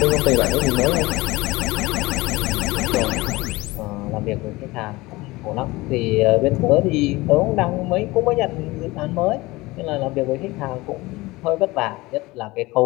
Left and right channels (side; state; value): right; quieter; 20.9 dB